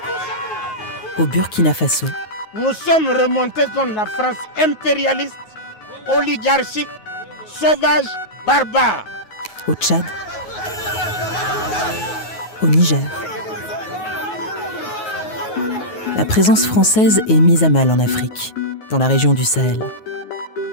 au Burkina Faso. Nous sommes remontés contre la France impérialiste, oligarchique, sauvage, barbare. Au Tchad, au Niger. La présence française est mise à mal en Afrique, dans la région du Sahel.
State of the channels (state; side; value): late; right; 9.4 ms